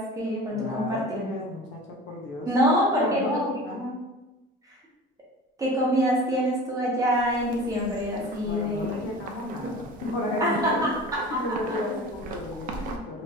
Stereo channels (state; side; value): normal; both; correlation 0.39